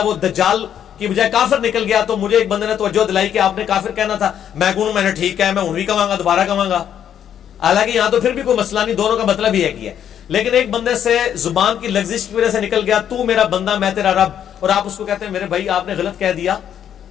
وہ دجال کی بجائے کافر نکل گیا، تو مجھے ایک بندے نے توجہ دلائی کہ آپ نے کافر کہنا تھا، میں کہوں میں نے ٹھیک ہے، میں انہی کہوں گا، دوبارہ کہوں گا. حالانکہ یہاں تو پھر بھی کوئی مسئلہ نہیں، دونوں کا مطلب ہی ہے کہ ہے. لیکن ایک بندے سے زبان کی لغزش کی وجہ سے نکل گیا تو میرا بندہ میں تیرا رب, اور آپ اس کو کہتے ہیں میرے بھائی آپ نے غلط کہہ دیا,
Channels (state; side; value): quieter; right; 9.5 dB